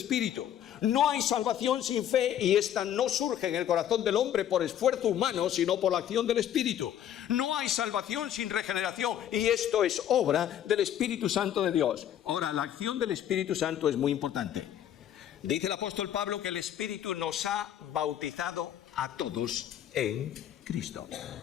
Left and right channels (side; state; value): right; quieter; 10.5 dB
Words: No hay salvación sin fe, y esta no surge en el corazón del hombre por esfuerzo humano, sino por la acción del Espíritu. No hay salvación sin regeneración, y esto es obra del Espíritu Santo de Dios. Ahora, la acción del Espíritu Santo es muy importante. Dice el apóstol Pablo que el Espíritu nos ha bautizado a todos en Cristo.